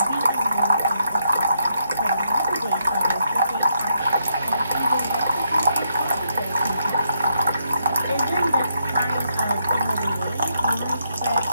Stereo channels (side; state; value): both; inverted; correlation -0.77